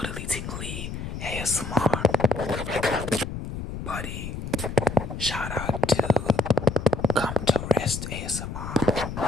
Tingly ASMR. Buddy. Shout out to Come to Rest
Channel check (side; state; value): left; noise; rumble, 7 dB below the sound